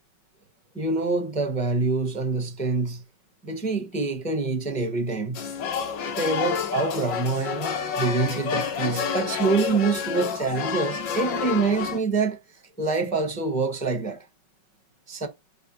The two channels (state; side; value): late; right; 5.4 ms